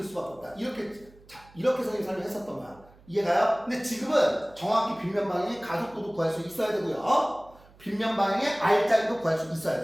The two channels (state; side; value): noise; right; hum, 26 dB below the sound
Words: 수밖에 없다. 이렇게 선생님 설명했었던 거야. 이해가요? 근데 지금은 정확히 빗면 방향의 가속도도 구할 수 있어야 되고요. 빗면 방향의 R자리도 구할 수 있어야